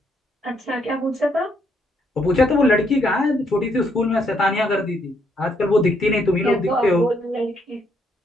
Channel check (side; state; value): both; normal; correlation 0.73